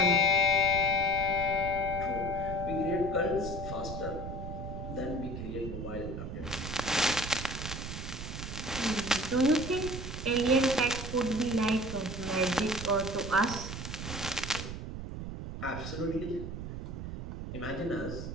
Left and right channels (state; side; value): noise; right; rumble, 7 dB below the sound